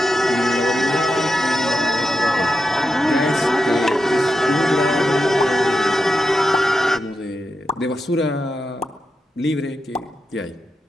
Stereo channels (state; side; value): normal; both; correlation 0.88